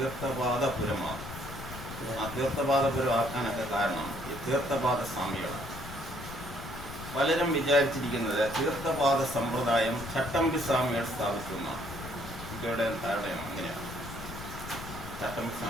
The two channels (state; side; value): noise; left; rumble, 12 dB below the sound